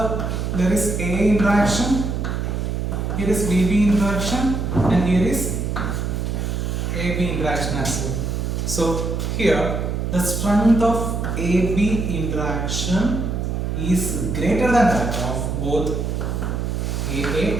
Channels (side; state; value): right; noise; hum, 1 dB below the sound